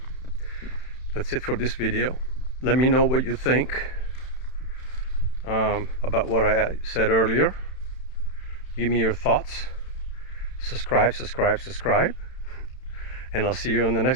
That's it for this video. Let me know what you think about what I said earlier. Give me your thoughts. Subscribe, and I'll see you in the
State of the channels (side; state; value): right; late; 31 ms